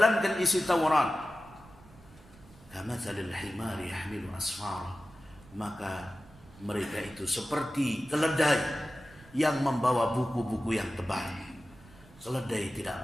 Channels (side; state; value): right; noise; rumble, 23 dB below the sound